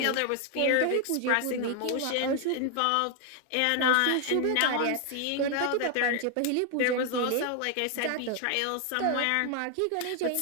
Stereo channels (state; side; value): different; both; correlation 0.00